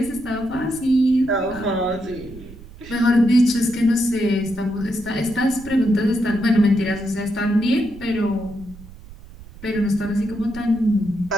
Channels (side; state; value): right; noise; rumble, 18 dB below the sound